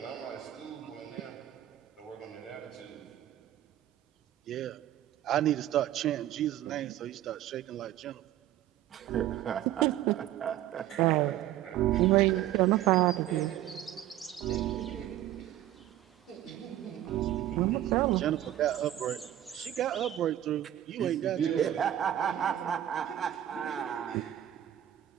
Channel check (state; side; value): quieter; left; 12.7 dB